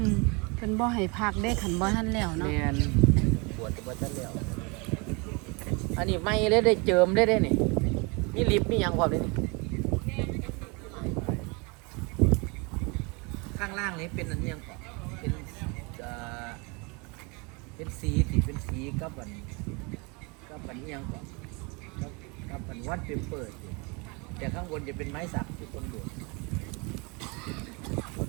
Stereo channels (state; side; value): quieter; left; 29.6 dB